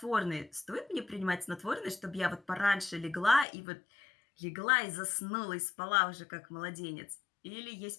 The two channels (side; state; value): right; drops out; at 3.5 s